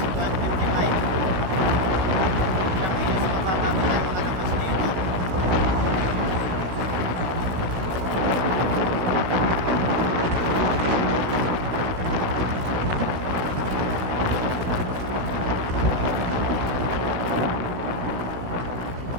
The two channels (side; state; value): left; late; 16 ms